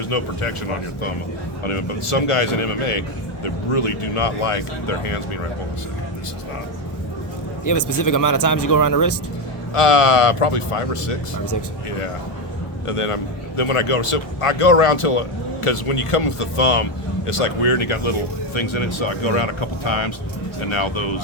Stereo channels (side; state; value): right; late; 1.0 ms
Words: no protection on your thumb. But some guys in MMA, they really do not like their hands being right. Hold on a second. This is not. You have a specific amount of times you go around the wrist? Probably 5 or 6. 5 or 6. Yeah. And then when I go, so I go around till, because when you come with the thumb, it's like weird and you got little things in it. So I go around a couple times, and now